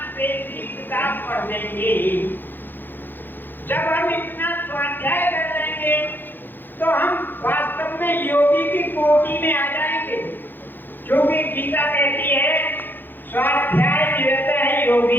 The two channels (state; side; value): late; right; 0.094 ms